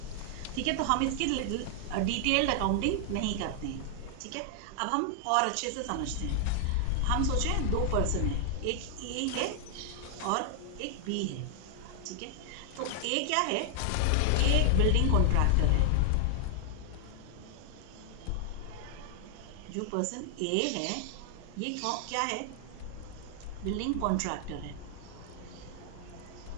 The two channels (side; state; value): both; different; correlation 0.00